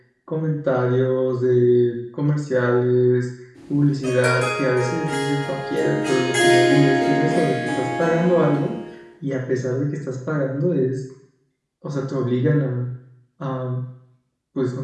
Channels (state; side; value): identical; both; correlation 1.00